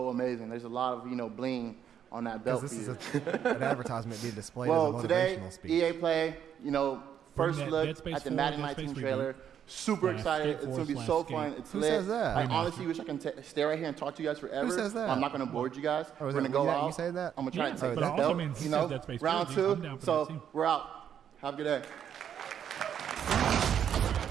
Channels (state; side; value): quieter; left; 9.0 dB